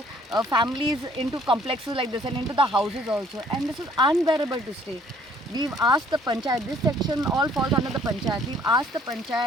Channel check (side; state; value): both; normal; correlation 0.60